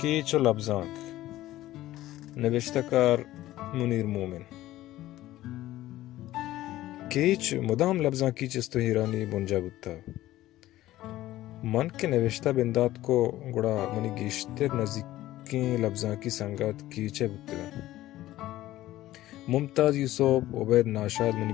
و لبزانک نوشته کار منیر مومن. کیچ مدام لبزاں کیچ تو ہیرانی بنجا بودتا من کے نوشتہ بندات کو گڑا منی گیشتر نزدیکیں لبزاں کی سنگت کیچے بودتا. ممتاز یوسف عبید ناشاد منی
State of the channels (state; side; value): quieter; right; 15.3 dB